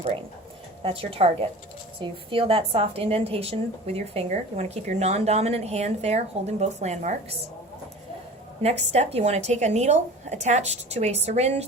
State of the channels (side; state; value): both; normal; correlation 0.39